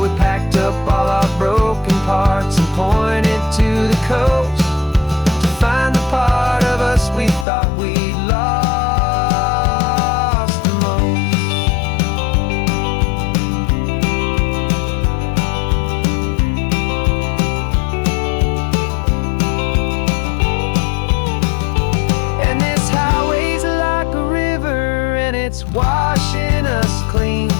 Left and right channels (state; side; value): drops out; right; at 7.5 s